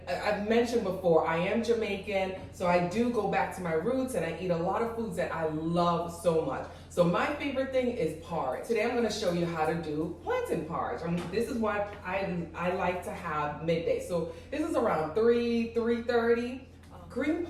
I've mentioned before, I am Jamaican, so I do go back to my roots and I eat a lot of foods that I love so much. So my favorite thing is porridge. Today I'm gonna show you how to do plantain porridge. This is what I like to have midday. So this is around 3:30. Green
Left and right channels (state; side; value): identical; both; correlation 1.00